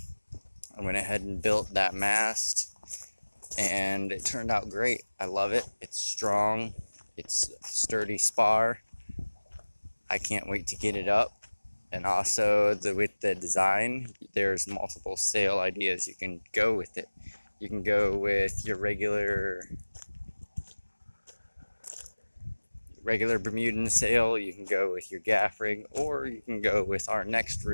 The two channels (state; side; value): inverted; both; correlation -1.00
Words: I went ahead and built that mast, and it turned out great. I love it. It's strong. It's a sturdy spar. I can't wait to get it up. And also, with the design, there's multiple sail ideas you can go with it. You can go with your regular Bermudan sail, you can go with your gaff rig, or you can go with our next